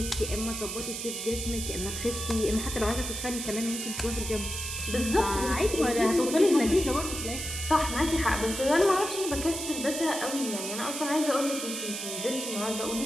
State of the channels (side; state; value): right; noise; hiss, 5 dB below the sound